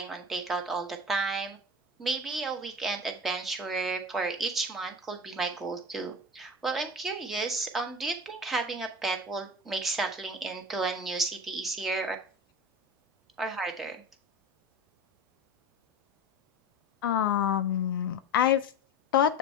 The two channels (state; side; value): normal; both; correlation 0.31